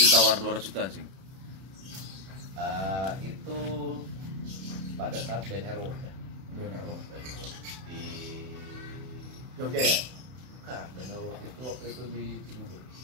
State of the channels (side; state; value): left; late; 31 ms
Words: 200 juta cing? Itu pada saat BNRO ya. BNRO. Di Jogja ya? Bukan, BNRO itu waktu itu di Cibubur.